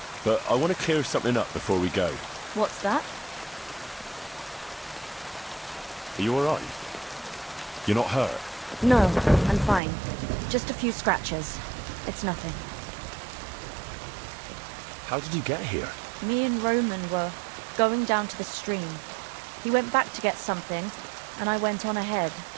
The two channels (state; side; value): drops out; left; at 9.8 s